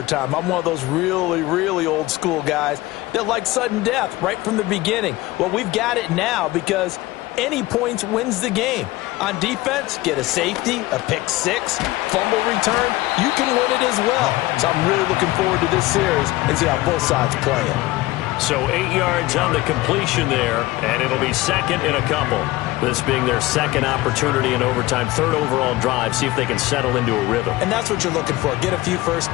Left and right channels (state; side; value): quieter; right; 18.8 dB